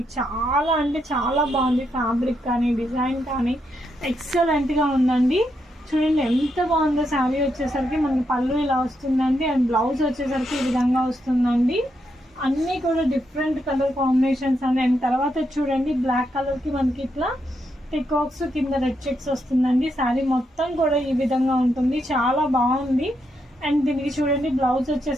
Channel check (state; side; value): normal; both; correlation 0.81